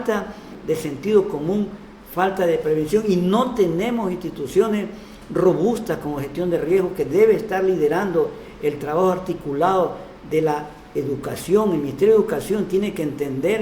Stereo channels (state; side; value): identical; both; correlation 1.00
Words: de sentido común, falta de prevención, y no tenemos instituciones robustas como gestión de riesgo, que debe estar liderando el trabajo articulado de la educación. El Ministerio de Educación tiene que